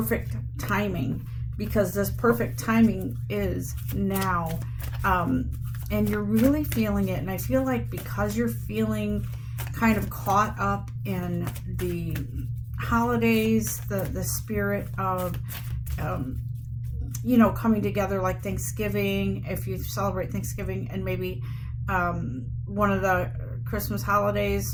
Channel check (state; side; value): identical; both; correlation 1.00